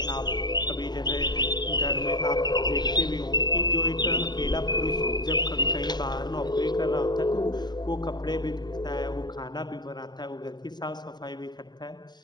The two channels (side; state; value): right; late; 0.21 ms